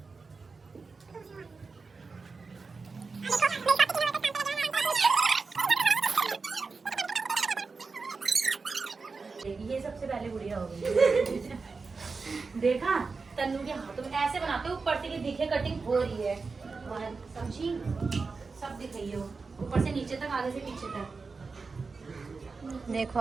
ये सबसे पहले गुड़िया हो गई। देखा तन्नू के हाथों में ऐसे बनाते, ऊपर से कि दिखे कटिंग हो रही है, और समझी सब दिख रही हो, ऊपर से नीचे तक, आगे से पीछे तक। देखो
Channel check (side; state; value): left; quieter; 4.4 dB